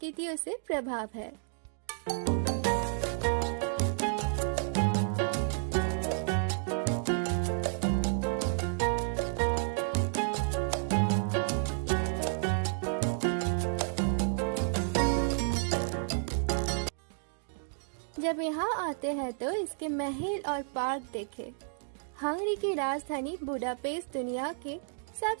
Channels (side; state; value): left; silent; digital silence